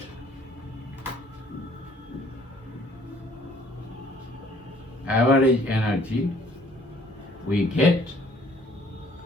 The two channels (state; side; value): normal; both; correlation 0.58